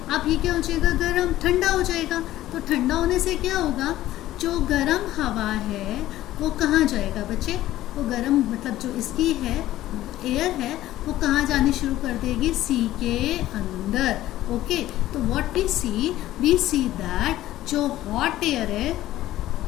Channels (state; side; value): quieter; right; 14.7 dB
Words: अब ये क्या हो जाएगा, गर्म ठंडा हो जाएगा. तो ठंडा होने से क्या होगा, जो गर्म हवा है वो कहाँ जाएगा बच्चे, वो गर्म मतलब जो इसकी है एयर है वो कहाँ जानी शुरू कर देगी, सी के अंदर. ओके, तो व्हाट वी सी दैट जो हॉट एयर है